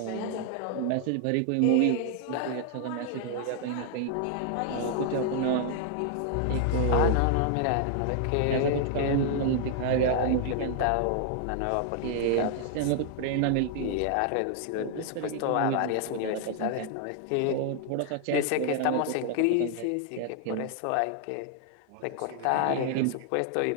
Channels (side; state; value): both; different; correlation 0.00